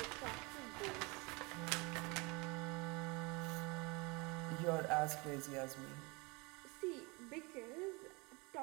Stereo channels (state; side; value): quieter; left; 27.3 dB